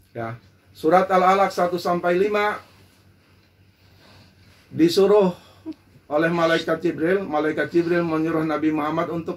Ya. Surat Al-Alaq 1 sampai 5 disuruh oleh malaikat Jibril menyuruh Nabi Muhammad untuk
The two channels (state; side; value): identical; both; correlation 1.00